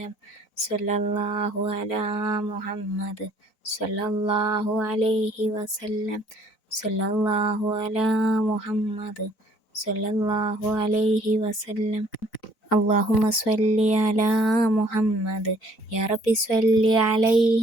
സ്വല്ലല്ലാഹു അലാ മുഹമ്മദ് സ്വല്ലല്ലാഹു അലൈഹി വസല്ലം. സ്വല്ലല്ലാഹു അലാ മുഹമ്മദ് സ്വല്ലല്ലാഹു അലൈഹി വസല്ലം. അല്ലാഹുമ്മ സ്വല്ലി അലാ മുഹമ്മദ് യാ റബ്ബി സ്വല്ലി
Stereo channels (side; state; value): right; late; 3.9 ms